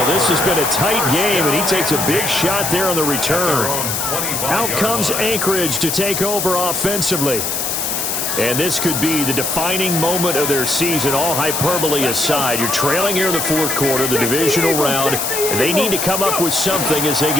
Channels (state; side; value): noise; left; hiss, 1 dB below the sound